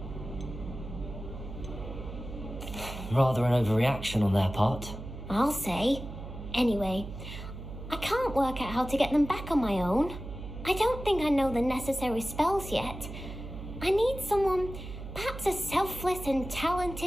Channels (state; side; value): noise; right; hum, 10 dB below the sound